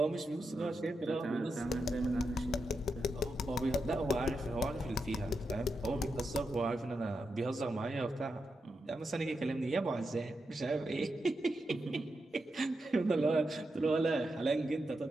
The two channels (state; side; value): normal; both; correlation 0.86